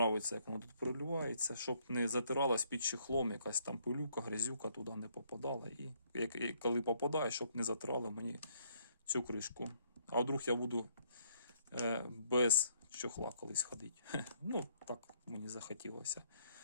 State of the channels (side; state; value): both; inverted; correlation -0.68